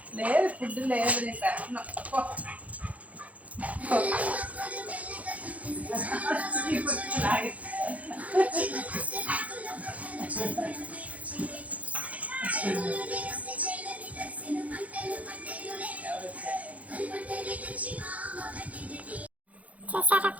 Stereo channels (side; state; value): left; late; 0.068 ms